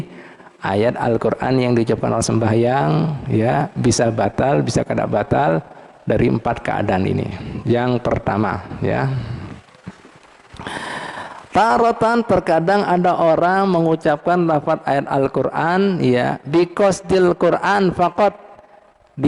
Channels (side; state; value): both; identical; correlation 1.00